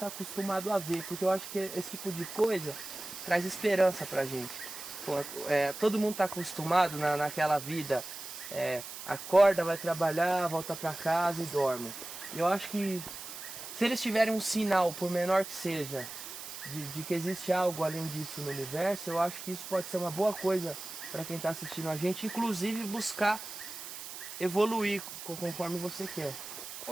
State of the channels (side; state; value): right; noise; hiss, 10 dB below the sound